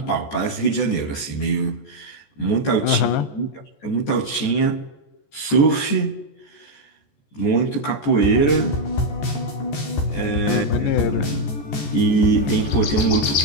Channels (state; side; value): late; right; 14 ms